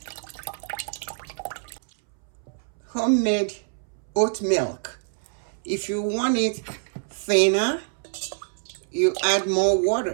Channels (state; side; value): silent; left; 61 dB below the other